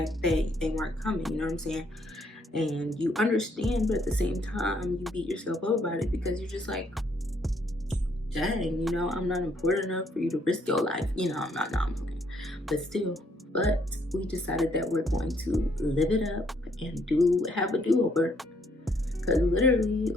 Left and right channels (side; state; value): both; normal; correlation 0.69